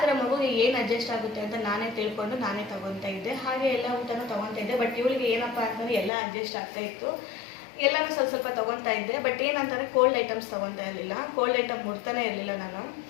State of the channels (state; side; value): drops out; right; at 6.1 s